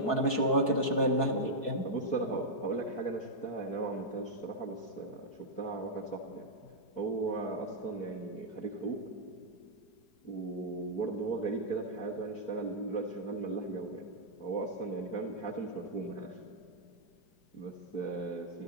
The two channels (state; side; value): late; right; 4.6 ms